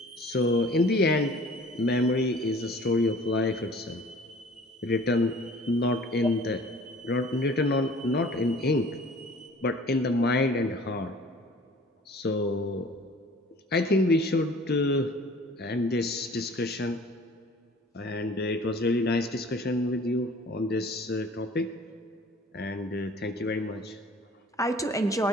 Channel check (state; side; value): normal; both; correlation 0.49